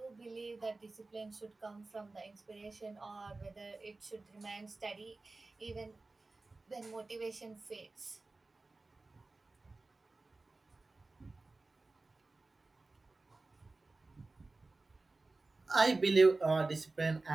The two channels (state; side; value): quieter; left; 3.4 dB